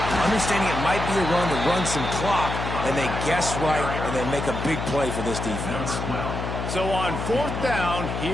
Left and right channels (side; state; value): left; noise; hum, 4 dB below the sound